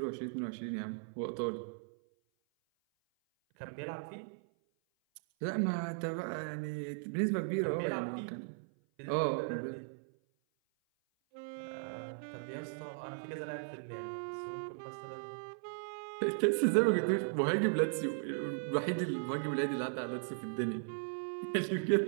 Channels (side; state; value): left; silent; 53 dB below the other